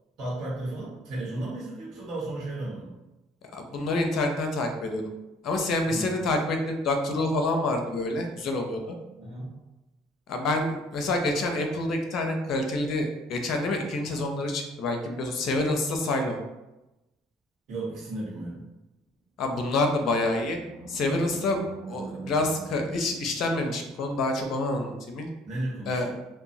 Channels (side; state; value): both; normal; correlation 0.57